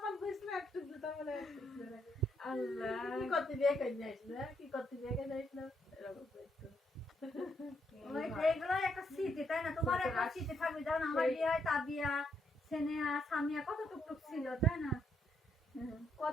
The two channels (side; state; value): both; normal; correlation 0.75